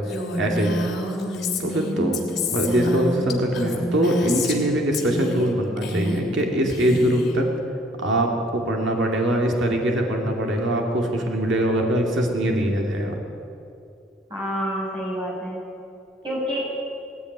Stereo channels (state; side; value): normal; both; correlation 0.60